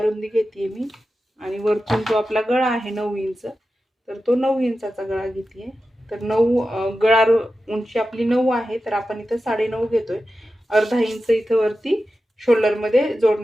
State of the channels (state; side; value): normal; both; correlation 0.92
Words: रुंदी घेते मी, आणि वरतून जो आपला गळा आहे 9 इंच, तर तो 9 इंचाचा गळा घेते. तर 9 गळा उंची आपली 9 आहे, तर आपण इथं 9.5 घेतोय. अर्धा इंच इथं वरती शोल्डर मध्ये